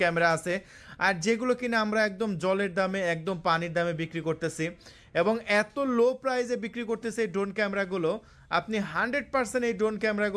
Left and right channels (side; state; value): both; identical; correlation 1.00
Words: ক্যামেরা আছে, আর যেগুলো কিনা আমরা একদম জলের দামে, একদম পানির দামে বিক্রি করতেছি এবং এত লো প্রাইসে বিক্রি করতেছে এই ড্রোন ক্যামেরাগুলো। আপনি 100% এই ড্রোন